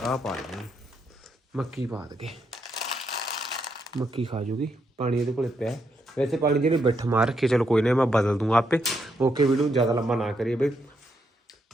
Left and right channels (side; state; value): both; normal; correlation 0.79